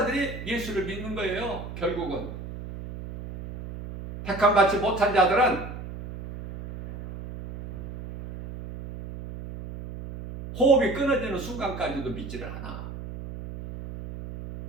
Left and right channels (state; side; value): noise; right; hum, 10 dB below the sound